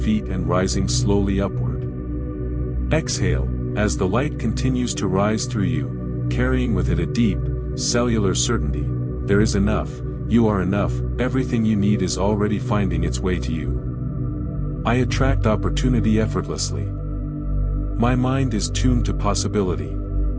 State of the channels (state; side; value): identical; both; correlation 1.00